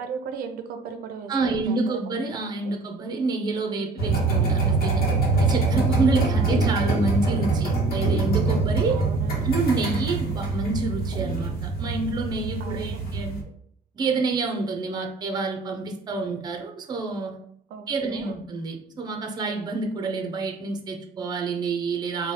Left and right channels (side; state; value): left; quieter; 3.3 dB